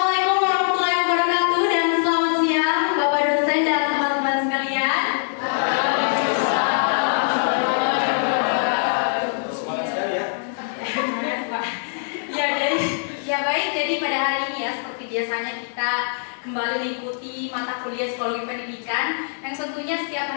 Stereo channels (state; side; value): silent; right; 64 dB below the other